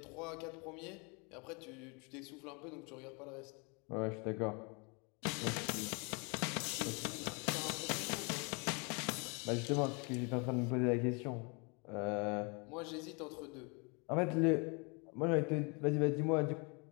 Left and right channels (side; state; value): right; quieter; 32.0 dB